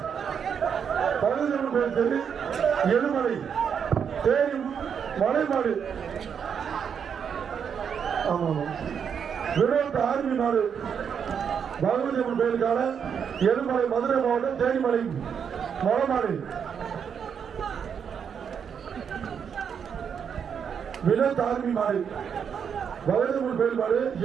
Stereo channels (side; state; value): left; quieter; 7.3 dB